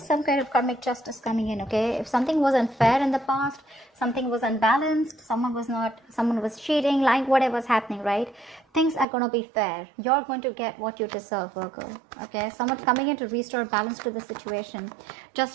some kind of karmic justice coming in, okay? If something was unfair in the past, something was unbalanced, someone was cheating, lying, whatever's happening, right? Things are going to be fair. You're going to get what you deserve, Virgo, okay? Someone's coming in to restore balance to the situation.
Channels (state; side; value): drops out; left; at 9.1 s